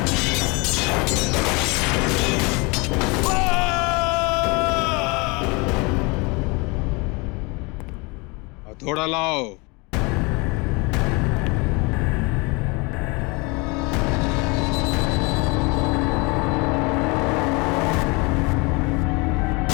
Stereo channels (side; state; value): right; quieter; 28.0 dB